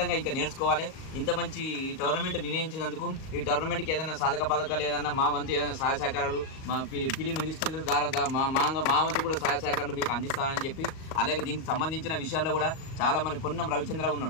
ఇంకా నేర్చుకోవాలి. ఇంత మంచి టోర్నమెంట్ నిర్ణయించినందుకు, ఈ టోర్నమెంట్కి ఏదైనా సాధక పథకాలు, ఏదైనా మా వంతు ఏదైనా సహాయ సహకారాలు, మా ఫిలిం మినిస్టర్ ద్వారా మా వంతు కూడా సహాయ సహకారాలు మీకు అందిస్తానని చెప్పి, అలాగే దీనికి సంబంధించిన విషయాల్లో కూడా చాలా మంది, పొన్నం రవిచంద్ర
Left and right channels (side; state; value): right; late; 38 ms